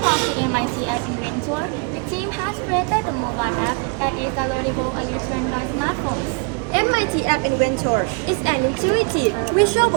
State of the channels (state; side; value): quieter; left; 32.9 dB